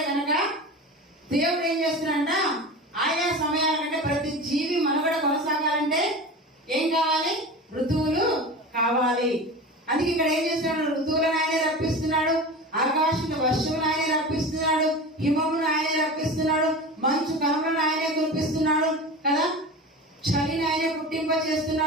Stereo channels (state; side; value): normal; both; correlation 0.31